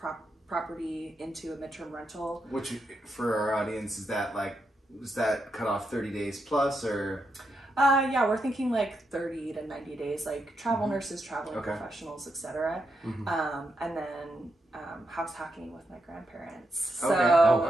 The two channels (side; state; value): both; normal; correlation 0.83